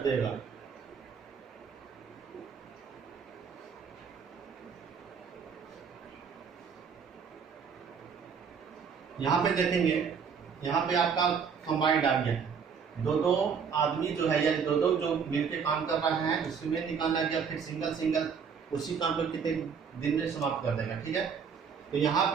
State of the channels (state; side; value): quieter; left; 6.4 dB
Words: यहाँ पे देखेंगे, यहाँ पे आपका कंबाइंड आ गया, दो दो आदमी जो है या दो दो जो मिलकर काम कर रहे हैं उसमें निकालना गया, फिर सिंगल सिंगल उसी काम को कितने दिन में समाप्त कर देगा। ठीक है, तो यहाँ